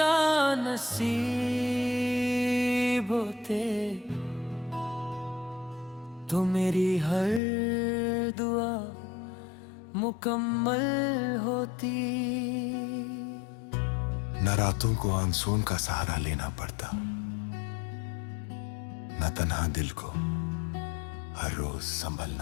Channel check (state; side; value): drops out; right; at 7.4 s